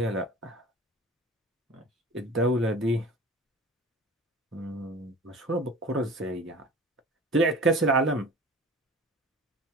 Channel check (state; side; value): normal; both; correlation 0.41